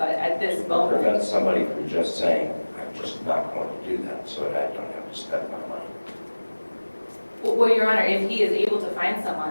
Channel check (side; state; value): both; inverted; correlation -1.00